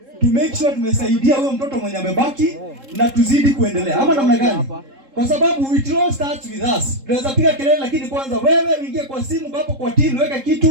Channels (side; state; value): left; late; 3.7 ms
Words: to make sure tumesaidia huyo mtoto mwenye amebaki na tuzidi kuendelea. Ama namna gani? Kwa sababu it all starts with us. Tunaweza piga kelele, lakini kwanza wewe uingie kwa simu hapo kwa team, weka